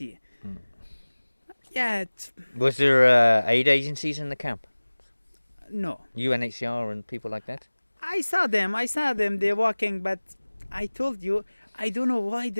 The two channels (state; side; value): inverted; both; correlation -1.00